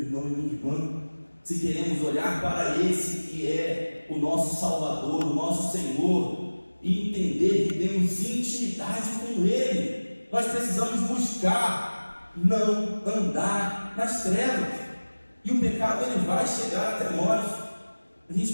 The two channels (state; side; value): inverted; both; correlation -1.00